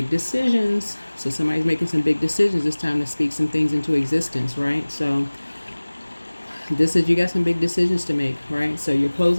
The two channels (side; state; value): both; inverted; correlation -1.00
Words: So somebody's making some big decisions. It's time to speak some things into existence, right? So you got some big decisions to make, right? So you're